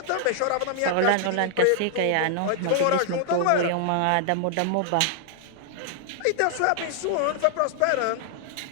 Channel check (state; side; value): different; both; correlation 0.00